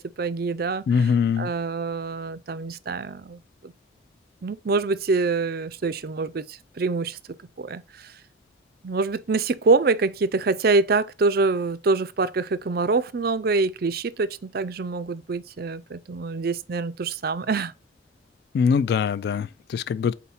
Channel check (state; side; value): normal; both; correlation 0.21